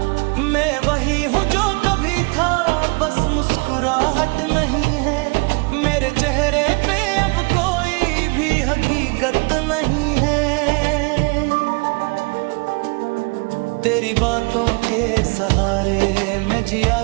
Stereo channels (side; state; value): left; quieter; 31.4 dB